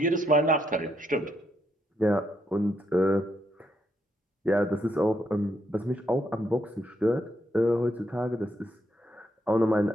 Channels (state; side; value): normal; both; correlation 0.77